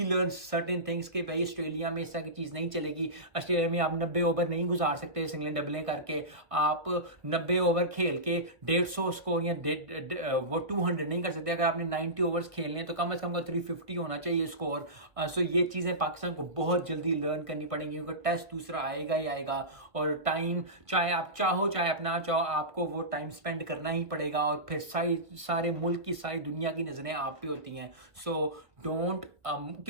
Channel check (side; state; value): left; late; 1.4 ms